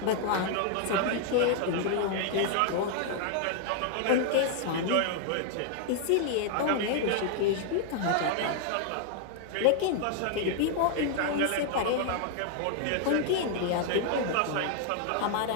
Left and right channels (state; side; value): different; both; correlation 0.00